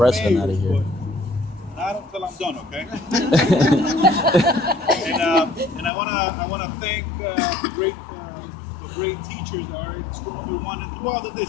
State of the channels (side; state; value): right; drops out; at 5.9 s